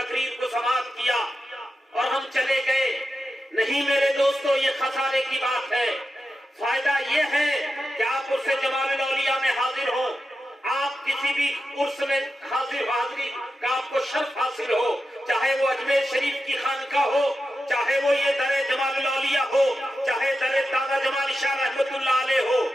کو سماعت کیا اور ہم چلے گئے، نہیں میرے دوستو، یہ خسارے کی بات ہے۔ فائدہ یہ ہے کہ آپ عرس جمال الاولیاء میں حاضر ہوں، آپ کسی بھی عرس میں حاضری کا آپ کو شرف حاصل ہو، چاہے وہ اجمیر شریف کی خانقاہ ہو، چاہے وہ یہ در جمال الاولیاء ہو، چاہے در دادا جمال شاہ رحمت اللہ علیہ ہو،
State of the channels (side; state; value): both; normal; correlation 0.90